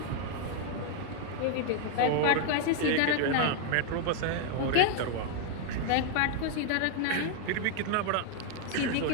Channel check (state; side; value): different; both; correlation 0.00